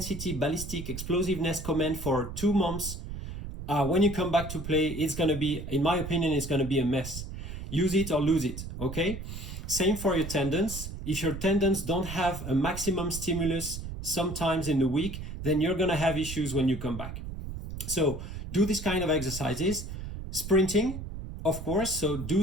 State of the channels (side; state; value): right; noise; rumble, 8 dB below the sound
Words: ballistic explosiveness command for 2 months, when you come back to play, it's going to be, in my opinion, it's going to be a mess. Use it or lose it, okay? Same for your tendons. If your tendons don't have a maximum stimulus sometimes in the week, then you're going to have issues when you come back. So do this kind of exercises. Sprinting, of course, so